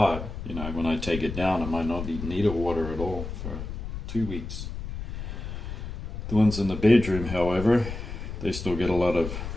you know, when I take it down, I might not need water at all for 2 weeks. The ones in the bedroom, however, they still get a lot of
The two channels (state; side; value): noise; left; rumble, 7 dB below the sound